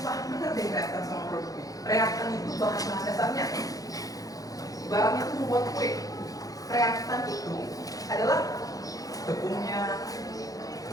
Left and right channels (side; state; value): right; late; 0.17 ms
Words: penting reaktan sama produk. Reaktan itu bahan-bahan dasarnya. Ibaratnya itu membuat kue. Reaktan itu adalah tepungnya,